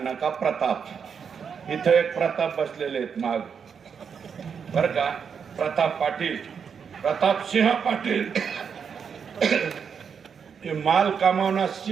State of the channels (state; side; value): quieter; left; 6.7 dB